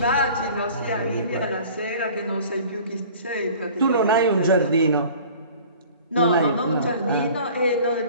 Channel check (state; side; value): inverted; both; correlation -0.46